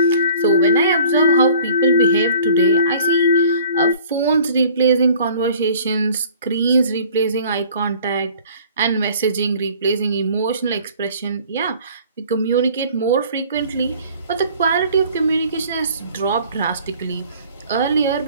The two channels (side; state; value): both; inverted; correlation -0.51